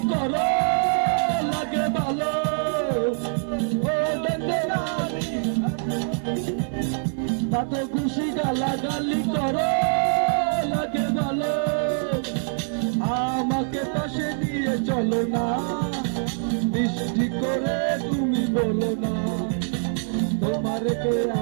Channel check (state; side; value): silent; left; 62 dB below the other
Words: করো লাগে ভালো। ও দেখতে গালি, তত খুশি গালাগালি করো লাগে ভালো। আমাকে পাশে নিয়ে চলো না, বৃষ্টি করে তুমি বলো না, তোমারে কে